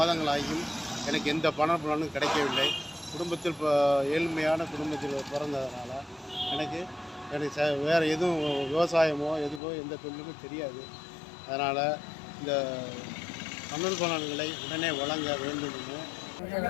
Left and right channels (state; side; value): drops out; right; at 9.6 s